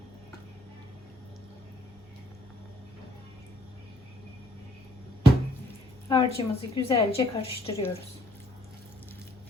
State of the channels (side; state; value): both; normal; correlation 0.64